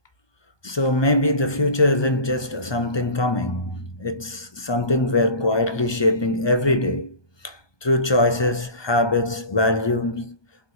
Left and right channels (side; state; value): right; late; 1.2 ms